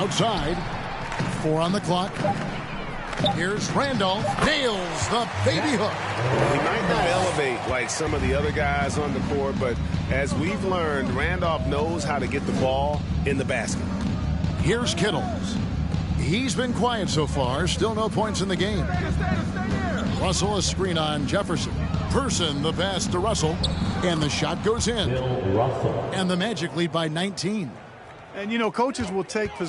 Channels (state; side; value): identical; both; correlation 1.00